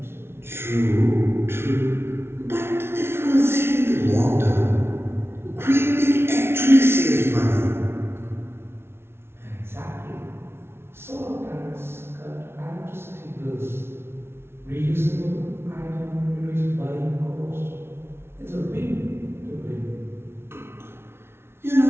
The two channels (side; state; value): left; late; 0.12 ms